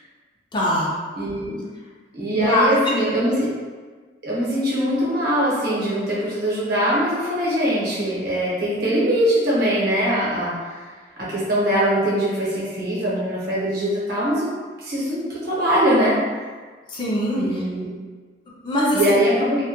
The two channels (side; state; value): both; normal; correlation 0.38